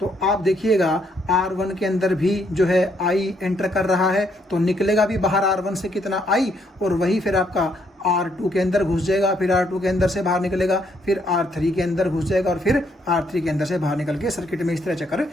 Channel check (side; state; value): both; normal; correlation 0.72